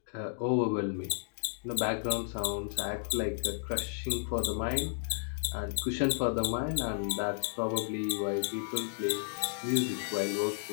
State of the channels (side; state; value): right; silent; digital silence